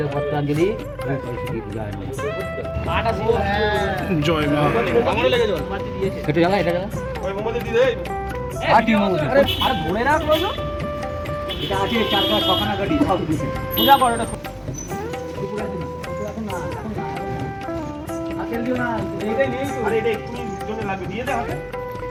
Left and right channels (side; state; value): both; identical; correlation 1.00